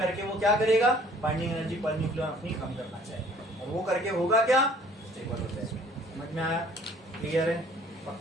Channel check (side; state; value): both; normal; correlation 0.55